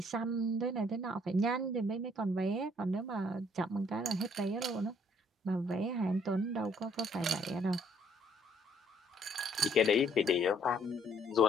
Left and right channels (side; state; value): both; normal; correlation 0.64